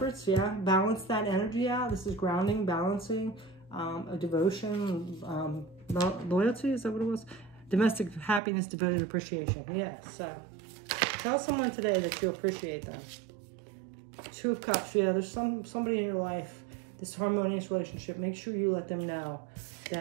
yeah. Balance that energy out. This is grounding, balancing, a devotion, loyalty, is that what it was? Domestic happiness, devoted appreciation. Yeah, so tell someone today that you appreciate them. Two of Cups, yeah, there's somebody in your life, this harmonious relationship. Make sure you let them know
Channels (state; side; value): drops out; left; at 8.4 s